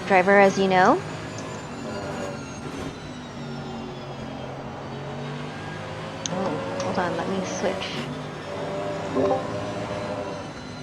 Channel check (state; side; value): identical; both; correlation 1.00